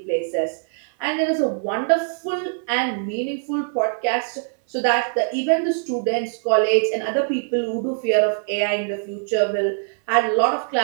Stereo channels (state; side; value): silent; left; 64 dB below the other